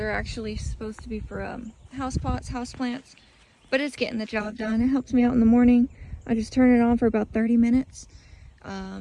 actually supposed to be for house pots, house plants, but it's getting the job done. It helps me out in the morning. I just turn it on for about 30 minutes.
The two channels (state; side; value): identical; both; correlation 1.00